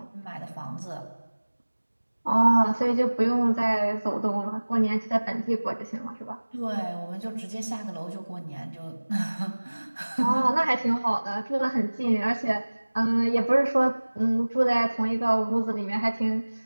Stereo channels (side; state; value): both; inverted; correlation -1.00